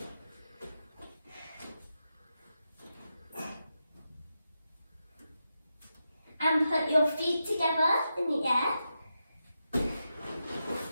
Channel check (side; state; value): both; inverted; correlation -0.88